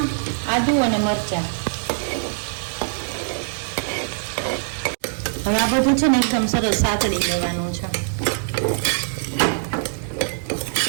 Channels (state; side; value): silent; left; digital silence